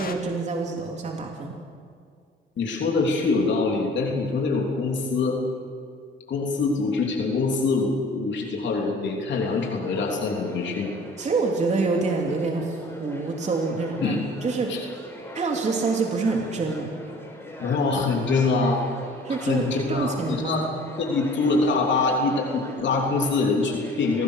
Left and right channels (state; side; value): normal; both; correlation 0.48